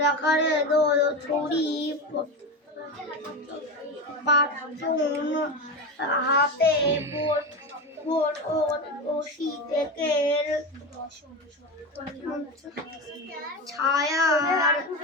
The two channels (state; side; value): normal; both; correlation 0.20